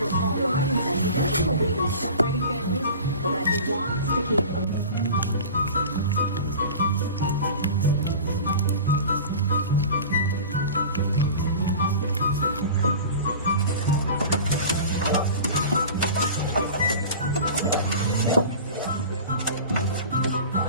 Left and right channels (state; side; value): inverted; both; correlation -0.37